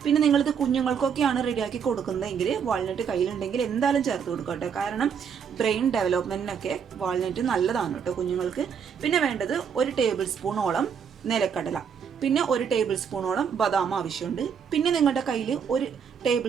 പിന്നെ നിങ്ങളിത് കുഞ്ഞുങ്ങൾക്കൊക്കെയാണ് റെഡിയാക്കി കൊടുക്കുന്നതെങ്കിൽ വാൾനട്ട് കയ്യിലുണ്ടെങ്കിൽ എന്തായാലും ചേർത്ത് കൊടുക്കുക കേട്ടോ, കാരണം ബ്രെയിൻ ഡെവലപ്മെൻറ്റിനൊക്കെ വാൾനട്ട് നല്ലതാണ് കേട്ടോ കുഞ്ഞുങ്ങൾക്ക്. പിന്നെ വേണ്ടത് 1 ടേബിൾ സ്പൂണോളം നിലക്കടല, പിന്നെ 1 ടേബിൾ സ്പൂണോളം ബദാം ആവശ്യമുണ്ട്. പിന്നെ നിങ്ങളുടെ കയ്യിൽ 1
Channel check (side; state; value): left; quieter; 7.1 dB